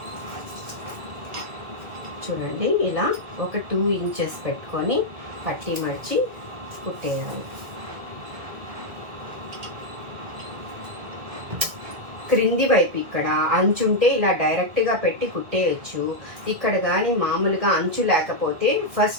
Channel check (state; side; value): late; left; 1.9 ms